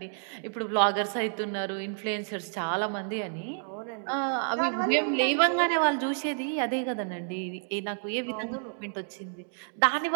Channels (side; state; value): left; silent; digital silence